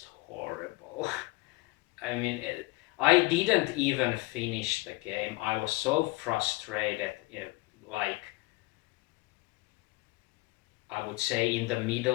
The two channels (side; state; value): right; quieter; 22.2 dB